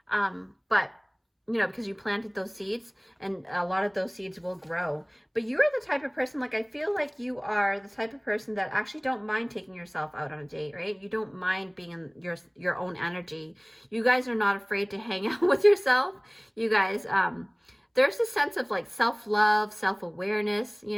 But because you planted those seeds, and a lot of those seeds will grow. But you're the type of person, like, I feel like you are the type of person that actually don't mind taking yourself out on a date, right? You don't mind being in your own energy. You guys are not afraid to hang out with yourself. You guys, there's a sense of, like, self-love, self-awareness,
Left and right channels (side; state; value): both; identical; correlation 1.00